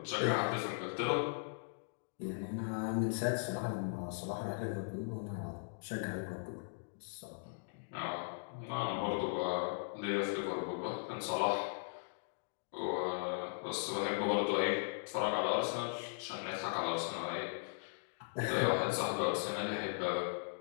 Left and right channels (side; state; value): right; silent; digital silence